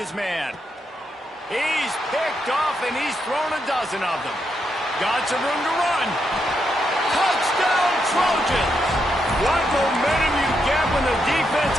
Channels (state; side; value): normal; both; correlation 0.81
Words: man. He's picked off, and he's thrown a dozen of them. Got some room to run. Touchdown, Trojans! What momentum you get when the defense